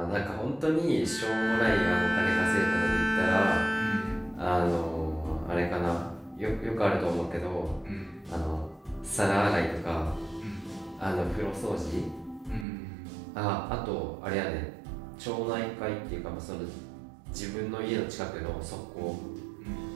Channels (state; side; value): drops out; left; at 12.7 s